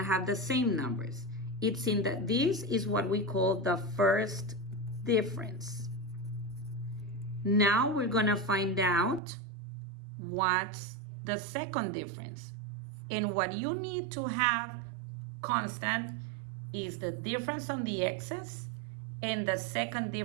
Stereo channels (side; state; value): left; drops out; at 9.2 s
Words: the same numbers. It's in that this is what we call the first difference. Now we're gonna find out what's the second difference. And what you need to have constant is the difference on the x's and the second